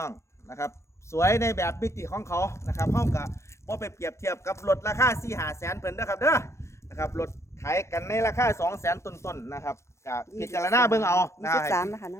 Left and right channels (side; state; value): right; late; 0.13 ms